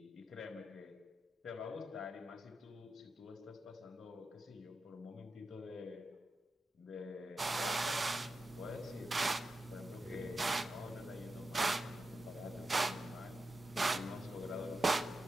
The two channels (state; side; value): normal; both; correlation 0.90